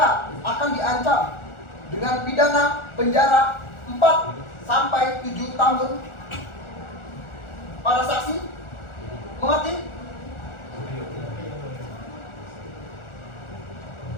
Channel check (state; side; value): late; right; 1.4 ms